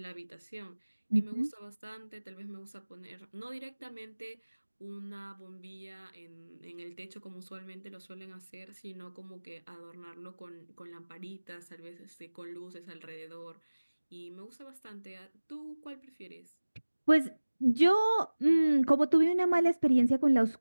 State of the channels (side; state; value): both; inverted; correlation -1.00